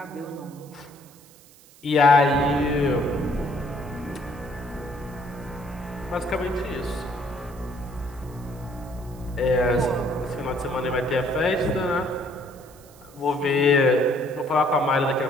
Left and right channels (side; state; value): right; noise; hiss, 25 dB below the sound